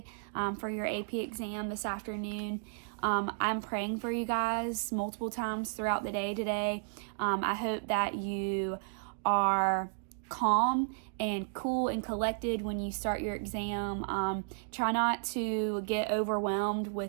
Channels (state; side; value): silent; left; digital silence